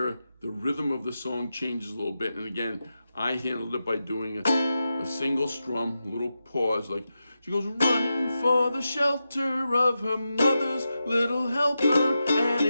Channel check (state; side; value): inverted; both; correlation -0.90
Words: the rhythm of the song changes a little bit. And again, I handled it by doing a single strum, a little pause, like she goes running for the shelter of her mother's little helper, and